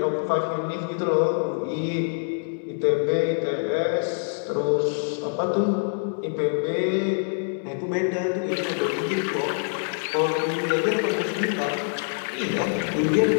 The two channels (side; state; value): right; silent; digital silence